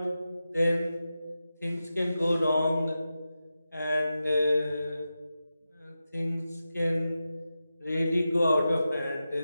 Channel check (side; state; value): both; inverted; correlation -0.91